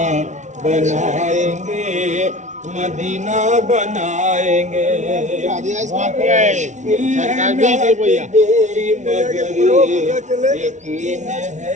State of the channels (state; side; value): late; left; 0.35 ms